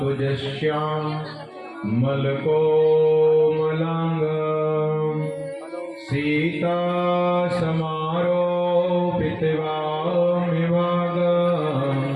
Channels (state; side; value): identical; both; correlation 1.00